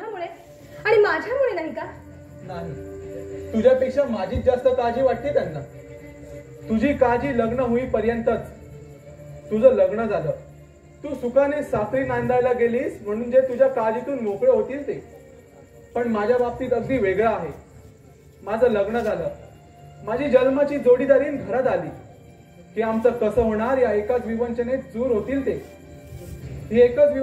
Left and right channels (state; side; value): identical; both; correlation 1.00